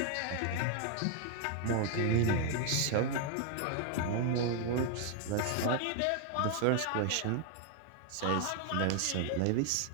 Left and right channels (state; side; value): different; both; correlation 0.00